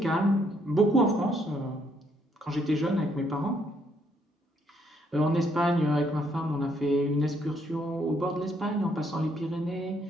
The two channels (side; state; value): both; normal; correlation 0.71